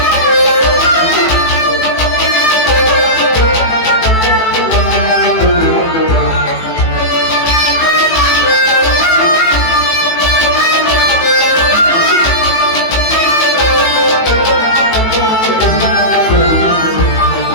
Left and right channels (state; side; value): late; right; 18 ms